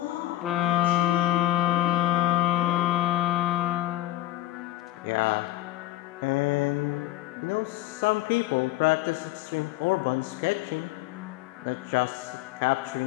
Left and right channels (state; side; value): quieter; right; 15.6 dB